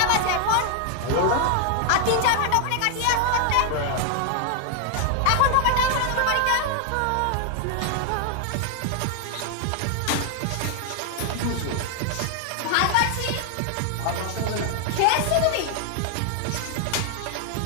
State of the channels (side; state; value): both; different; correlation 0.00